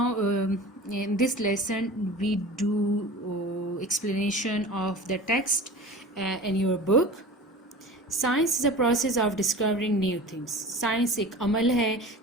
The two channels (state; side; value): normal; both; correlation 0.37